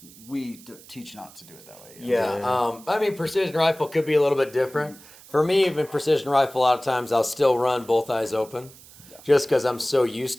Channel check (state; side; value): noise; right; hiss, 21 dB below the sound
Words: We teach not to do it that way. Yeah. I mean, precision rifle could be a little bit different. For me, even precision rifle, a lot of times I'll still run both eyes open just because I'm so used